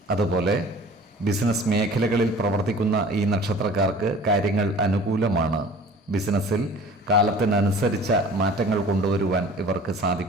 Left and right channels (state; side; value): normal; both; correlation 0.45